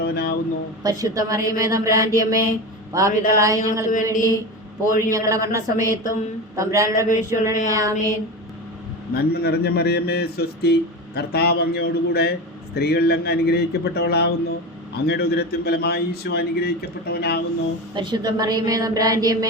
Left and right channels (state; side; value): normal; both; correlation 0.24